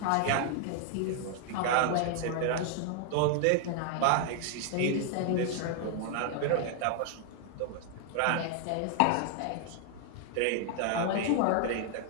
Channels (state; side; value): different; both; correlation 0.00